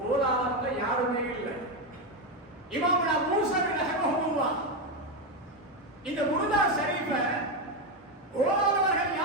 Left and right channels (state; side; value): normal; both; correlation 0.09